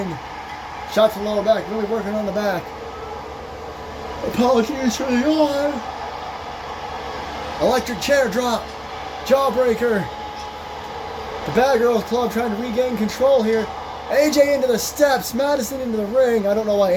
Shot to the lower back, really working on the back. Apologies for the arm. Electric chair drop. Jawbreaker. The Bad Girls Club trying to regain control here. AJ into the steps. Madison into the ring. I don't know why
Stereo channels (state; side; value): identical; both; correlation 1.00